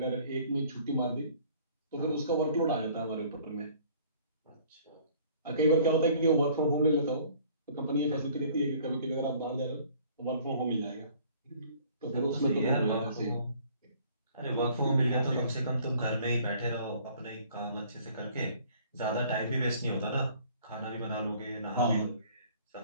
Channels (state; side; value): inverted; both; correlation -0.55